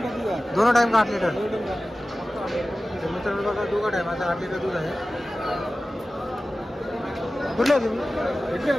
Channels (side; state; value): both; normal; correlation 0.96